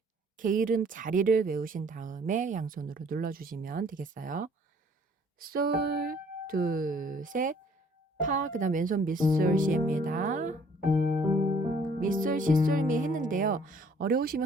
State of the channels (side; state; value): both; normal; correlation 0.59